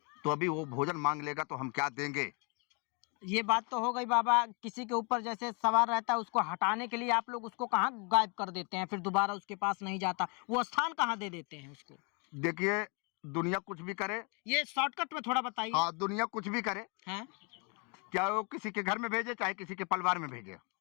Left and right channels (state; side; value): quieter; right; 34.0 dB